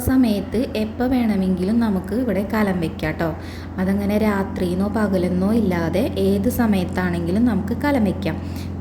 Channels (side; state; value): both; identical; correlation 1.00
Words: സമയത്ത് എപ്പോൾ വേണമെങ്കിലും നമുക്ക് ഇവിടെ കലം വയ്ക്കാം കേട്ടോ. അതങ്ങനെ രാത്രിയെന്നോ പകലെന്നോ ഇല്ലാതെ ഏത് സമയത്താണെങ്കിലും നമുക്ക് കലം വയ്ക്കാം.